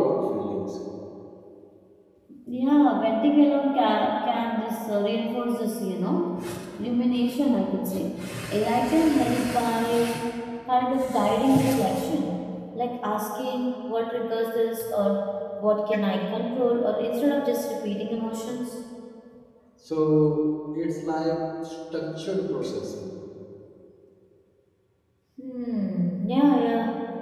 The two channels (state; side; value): identical; both; correlation 1.00